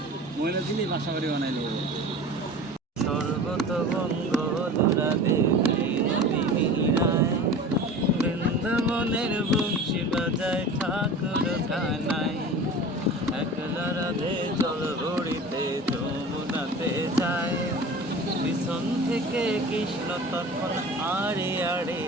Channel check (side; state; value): both; normal; correlation 0.37